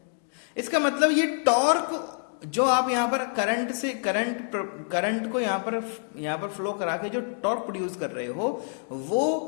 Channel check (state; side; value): silent; right; 60 dB below the other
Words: इसका मतलब ये टॉर्क जो आप यहां पर करंट से करंट को यहां पर फ्लो करा के जो टॉर्क प्रोड्यूस कर रहे हो वो,